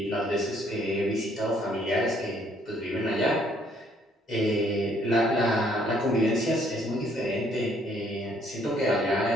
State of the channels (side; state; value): both; normal; correlation 0.65